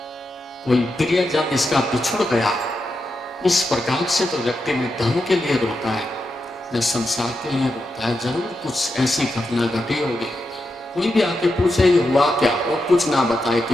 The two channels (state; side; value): normal; both; correlation 0.87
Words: कोई प्रियजन इसका बिछुड़ गया। इस प्रकार से तो व्यक्ति ने धन के लिए रोता है, न संसार के लिए रोता है। जरूर कुछ ऐसी घटना घटी होगी। कोई भी आके पूछे ये हुआ क्या, वो कुछ ना बताए,